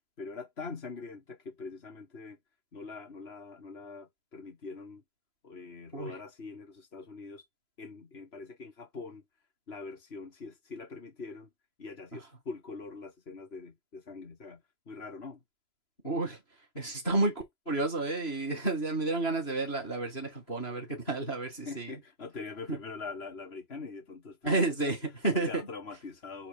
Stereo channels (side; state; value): right; late; 3.0 ms